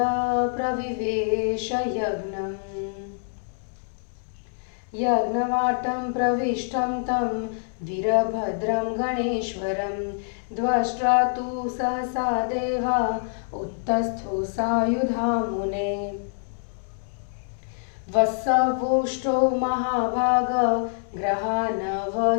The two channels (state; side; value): silent; right; 61 dB below the other